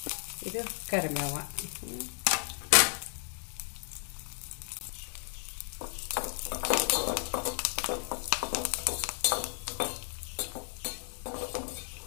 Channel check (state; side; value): silent; right; 55 dB below the other